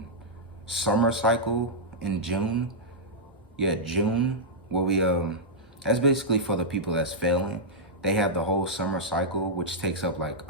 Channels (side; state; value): both; normal; correlation -0.08